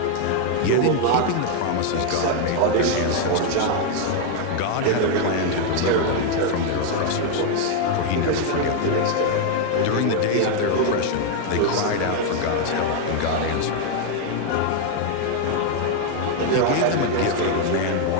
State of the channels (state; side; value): different; both; correlation 0.01